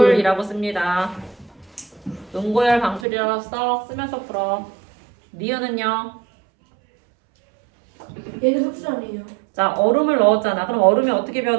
씁니다. 응고열 방출이라고 쓰면서 풀어. 니은은요? 얘는 흡수 아니에요. 자, 얼음을 넣었잖아. 그럼 얼음이 어떻게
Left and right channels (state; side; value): drops out; left; at 3.1 s